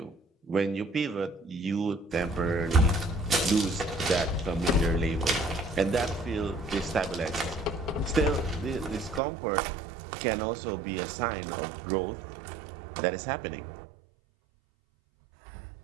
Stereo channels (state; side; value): drops out; left; at 9.2 s